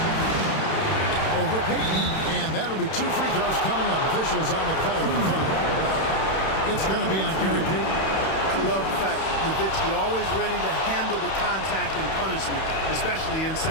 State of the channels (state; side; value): late; right; 31 ms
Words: Over Payton, and that'll be two free throws coming up. Officials on the call with the foul. It's going to be on Gary Payton. I love the fact Nowitzki always ready to handle the contact and punishment, especially